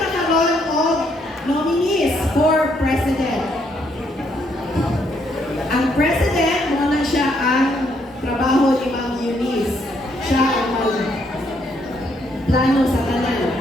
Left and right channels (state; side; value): normal; both; correlation 0.72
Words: of nominees for president. Ang president, muna siya ang trabaho ni Ma'am Eunice. Siya ang plano sa tanan.